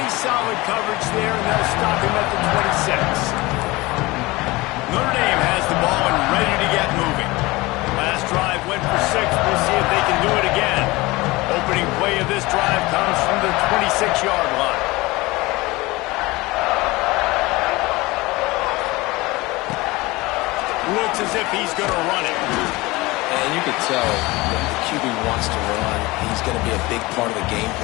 solid coverage there, and they'll stop him at the 26. Notre Dame has the ball and ready to get moving. Last drive went for 6. We'll see if they can do it again. Opening play of this drive comes from the 26-yard line. Looks as if he's going to run it. And you could tell that the QB wants to run. He's going to be a big part of the game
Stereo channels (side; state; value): right; quieter; 21.6 dB